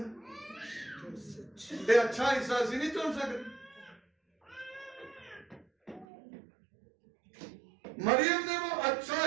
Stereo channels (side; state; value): left; drops out; at 6.1 s